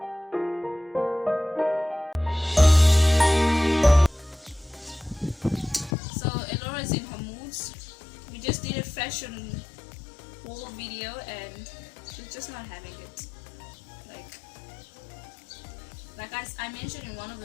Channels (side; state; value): right; drops out; at 6.0 s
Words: In her moods. We just did a fashion haul video and she's just not having it. Like I mentioned in one of